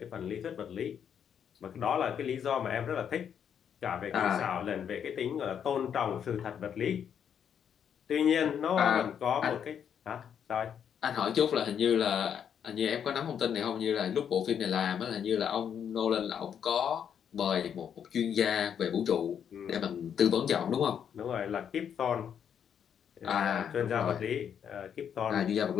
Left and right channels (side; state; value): right; quieter; 8.3 dB